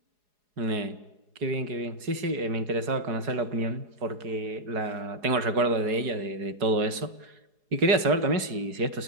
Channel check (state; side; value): late; left; 4.8 ms